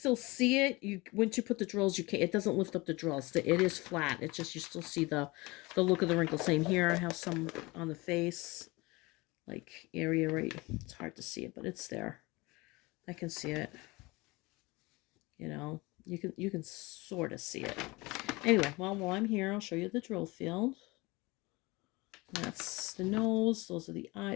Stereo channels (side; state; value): right; quieter; 23.5 dB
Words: see it, once you put the drills, it doesn't lift up the drills. It is flat. It's just you still see the look of the wrinkle. Same here. I have some on the face, like area right. It's hard to see it, but it's there. I can see it. You know, you can sort of see it. Anyway, well, while I'm here, I'll show you the drill field. That's the nose. Those are the